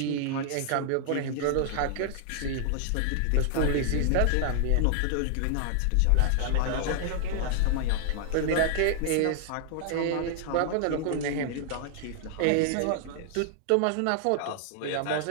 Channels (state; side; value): different; both; correlation -0.01